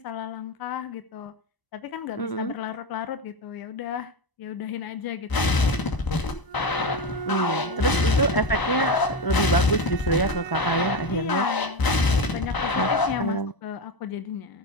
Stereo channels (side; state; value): right; late; 1.0 ms